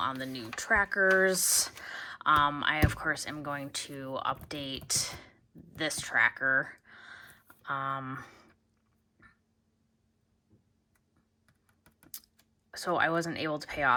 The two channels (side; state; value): both; identical; correlation 1.00